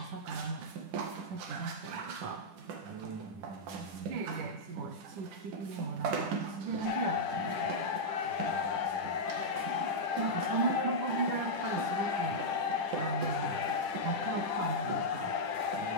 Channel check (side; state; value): left; late; 10 ms